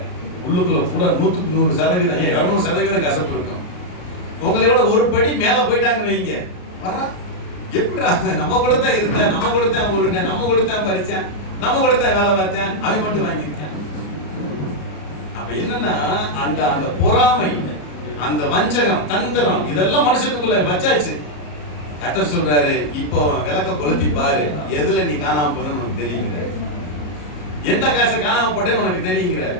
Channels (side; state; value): right; late; 34 ms